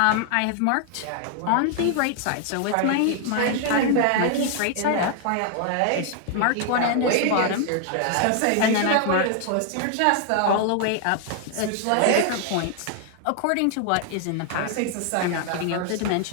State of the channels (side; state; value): both; different; correlation 0.00